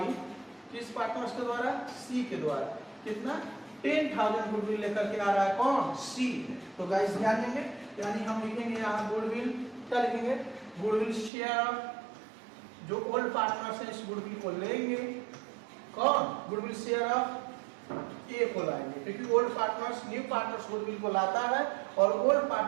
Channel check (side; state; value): left; drops out; at 11.3 s